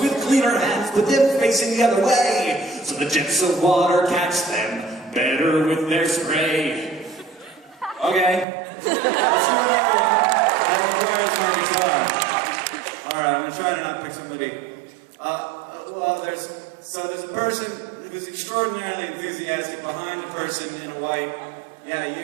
cleaner hands put them facing the other way, so the jets of water catch them better with their spray. Okay. Let's do another one. That requires my guitar. Alright, I'm gonna try to not pick somebody. Well, there's a person who's extraordinarily enthusiastic behind a person in a white... Yeah,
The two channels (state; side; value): drops out; left; at 8.5 s